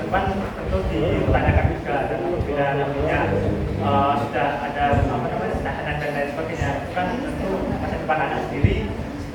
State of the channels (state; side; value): identical; both; correlation 1.00